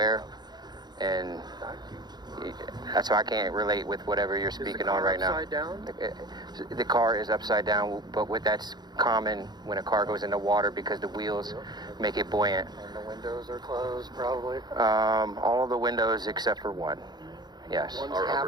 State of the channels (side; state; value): left; late; 0.20 ms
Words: and that's why I can't relate with whatever you're speaking on right now. Upside down? The car is upside down, but that's common when a car goes into water because the wheels make it buoyant. And the windows are closed, probably. All of the windows except for one. Yes. One's